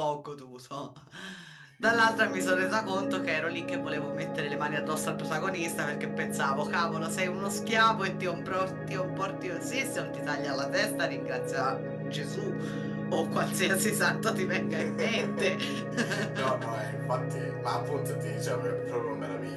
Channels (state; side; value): identical; both; correlation 1.00